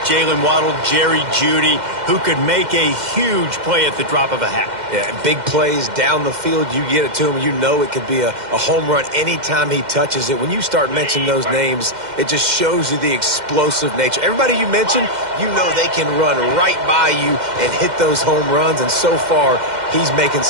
Waddle, Jerry Jeudy, who could make a huge play at the drop of a hat. Yeah, big plays down the field. You get it to him, you know it could be a home run anytime he touches it. When you start mentioning those names, it just shows you the explosive nature. Everybody you mentioned, you know they can run right by you and hit those home runs, and so far, he's making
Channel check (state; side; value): late; left; 2.1 ms